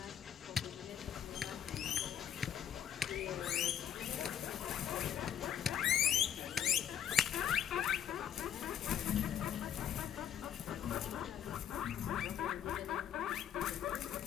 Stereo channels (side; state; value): right; quieter; 9.5 dB